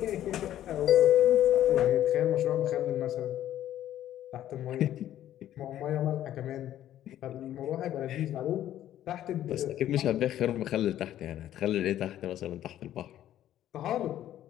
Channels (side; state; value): right; quieter; 12.2 dB